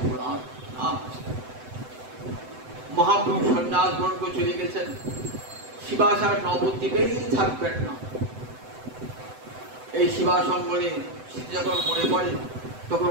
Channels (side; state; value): left; late; 7.9 ms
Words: না। মহাপ্রভু সন্ন্যাস গ্রহণ করে চলে গেছেন, শিবাসার নবদ্বীপেই থাকবেন না। এই শিবাসঙ্গনে যখন মনে পড়ে